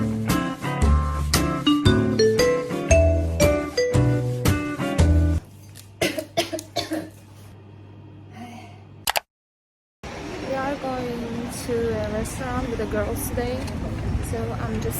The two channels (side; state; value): both; identical; correlation 1.00